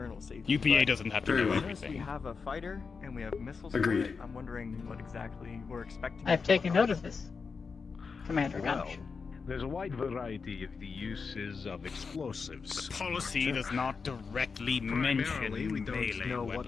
safety. UPA but doesn't have to Very do well. I noticed we everything. have a fighter and we have missiles. Agreed. For it. I'm wondering what exactly we're expecting. I've taken note of this, Commander Well, Gunch. there's a wide variety of the uses of explosives. The policy does not directly mention Primarily, we don't melee know what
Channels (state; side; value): quieter; right; 5.1 dB